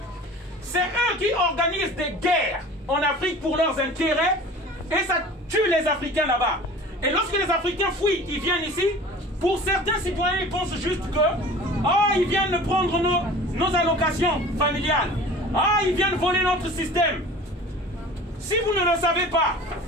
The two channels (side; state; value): both; normal; correlation 0.42